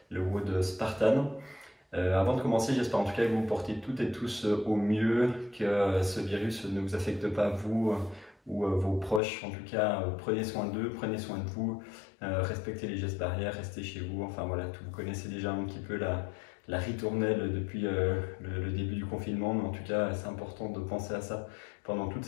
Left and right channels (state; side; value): drops out; right; at 9.2 s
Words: le WOD Spartan. Avant de commencer, j'espère en tout cas que vous vous portez toutes et tous au mieux, que ce virus ne vous affecte pas vous ou vos proches. En tout cas, prenez soin d'eux, prenez soin de vous, respectez les gestes barrières, restez chez vous. Enfin voilà, vous connaissez déjà un petit peu la ritournelle depuis le début du confinement, mais en tout cas, c'est important de penser à ça pendant toute